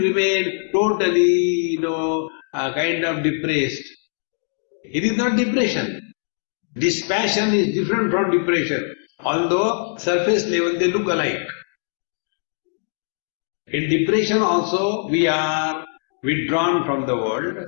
remain totally, kind of depressed. It is not depression. Dispassion is different from depression, although surface level they look alike. In depression also we are withdrawn from the world,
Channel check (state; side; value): silent; right; digital silence